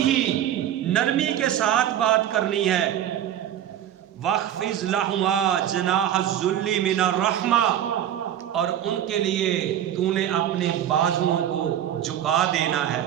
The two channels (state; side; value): quieter; left; 10.8 dB